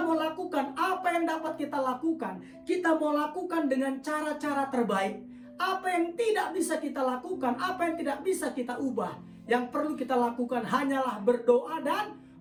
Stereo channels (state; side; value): identical; both; correlation 1.00